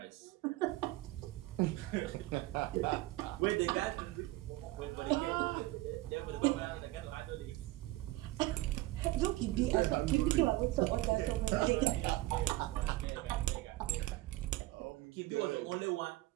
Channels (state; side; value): quieter; left; 18.5 dB